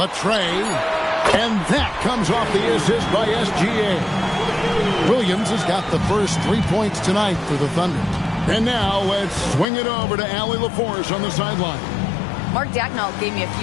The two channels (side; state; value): right; drops out; at 9.7 s